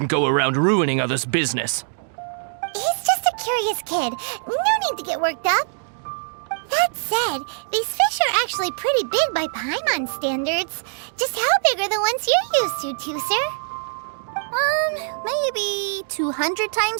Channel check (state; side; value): silent; left; digital silence